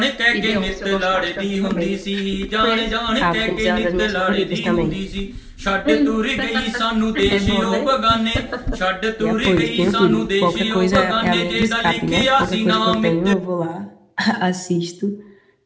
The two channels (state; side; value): identical; both; correlation 1.00